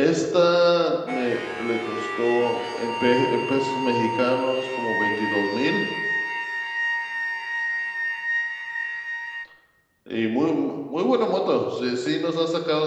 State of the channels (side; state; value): both; identical; correlation 1.00